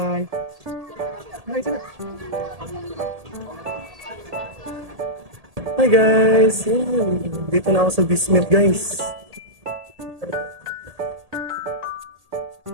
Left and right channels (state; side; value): late; left; 1.8 ms